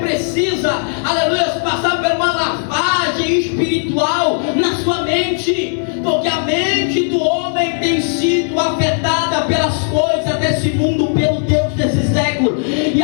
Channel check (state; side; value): silent; right; 57 dB below the other